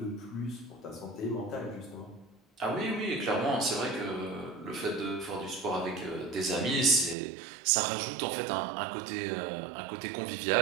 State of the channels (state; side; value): drops out; left; at 7.2 s